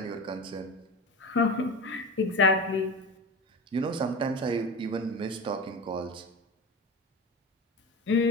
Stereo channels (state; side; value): normal; both; correlation 0.27